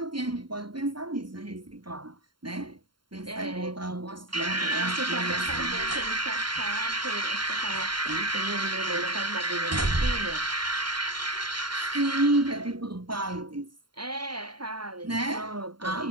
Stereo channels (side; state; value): left; late; 0.72 ms